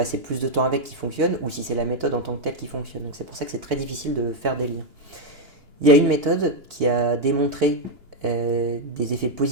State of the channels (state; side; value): late; left; 2.8 ms